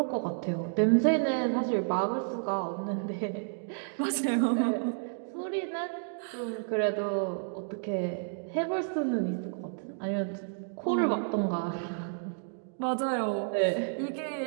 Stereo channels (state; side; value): silent; left; digital silence